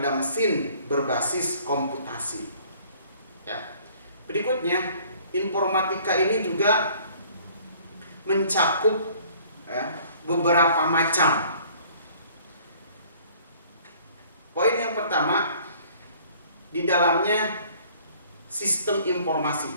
mesin berbasis komputasi ya. Berikutnya, informatika ini juga mencakup ya, beberapa macam. Poin yang pertama, di dalamnya sistem informasi.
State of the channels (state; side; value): inverted; both; correlation -0.55